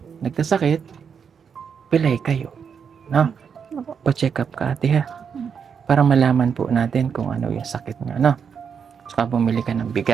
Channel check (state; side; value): quieter; left; 6.8 dB